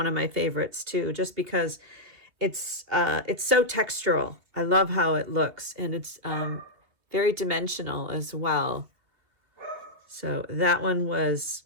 of my favorites too, just because it's so textural. I love how it looks, and it's very dimensional as well. So that one was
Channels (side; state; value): left; late; 2.8 ms